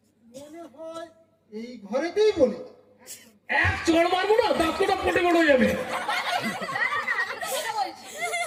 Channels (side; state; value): both; identical; correlation 1.00